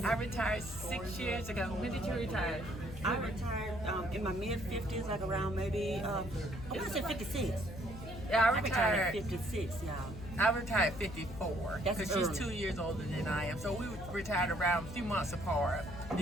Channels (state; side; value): noise; left; hum, 12 dB below the sound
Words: I retired 6 years ago. When did you retire? I retired in my mid 50s, like around maybe I want to say 56. Yeah, I I retired retired. at 56, y'all. I retired 54 That's because she's early. 2 years older than I am. So we retired around a few months apart